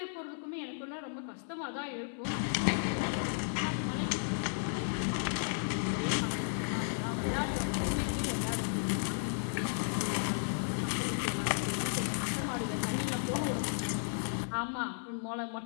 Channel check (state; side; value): silent; right; 55 dB below the other